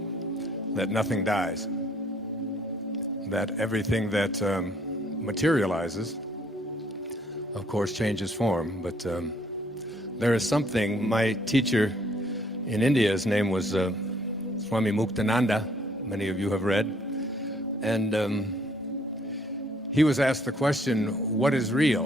nothing dies, that everything that materializes, of course, changes form. But there is something. My teacher in India, his name was Swami Muktananda. Many of you have read. And he was asked the question, "What is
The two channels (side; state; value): both; normal; correlation 0.64